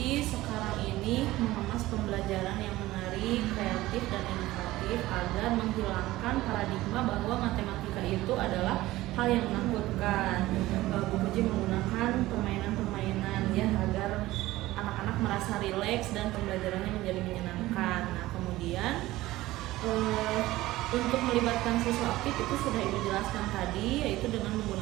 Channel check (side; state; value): left; quieter; 17.2 dB